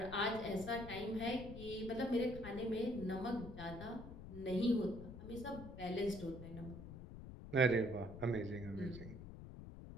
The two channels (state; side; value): noise; left; rumble, 11 dB below the sound